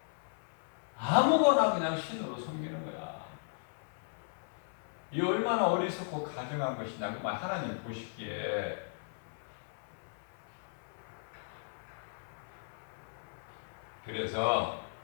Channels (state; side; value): silent; right; 54 dB below the other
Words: 아무거나 그냥 신으로 섬기는 거야. 이 얼마나 어리석고 가증한 것이냐. 그 말 하나님 보시기에. 그래서